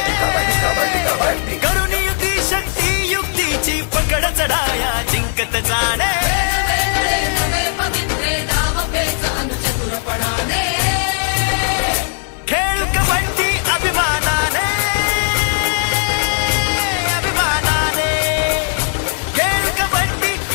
करून युक्ती शक्ती युक्तीची पकड चढाया जिंकत जाणे खेळ कबड्डी अभिमानाने अभिमानाने खेळ कबड्डी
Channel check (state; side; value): silent; right; digital silence